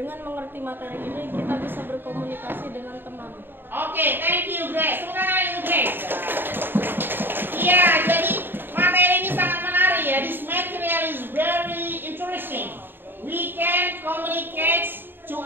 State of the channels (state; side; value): late; left; 0.097 ms